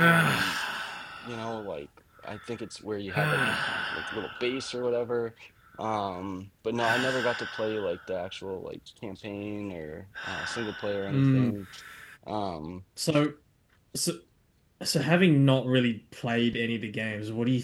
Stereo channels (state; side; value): identical; both; correlation 1.00